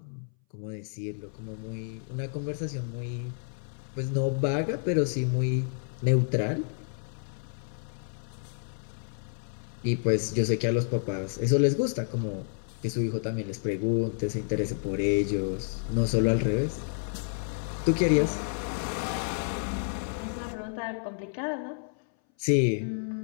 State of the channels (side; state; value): right; silent; 58 dB below the other